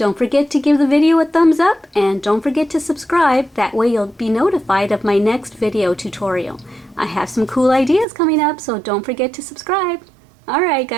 forget to give the video a thumbs up, and don't forget to subscribe. That way you'll be notified of my next video tutorial. I have some cool ideas coming up, so don't forget to subscribe. Alright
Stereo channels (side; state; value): left; drops out; at 8.1 s